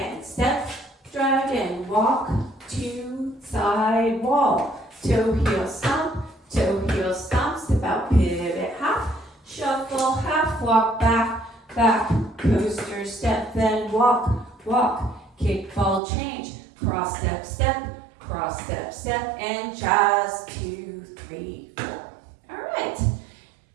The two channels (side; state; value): left; drops out; at 16.0 s